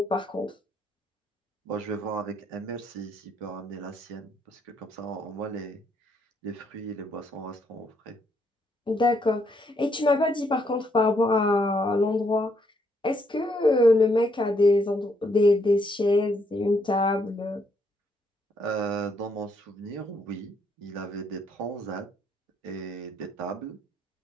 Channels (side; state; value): both; normal; correlation 0.73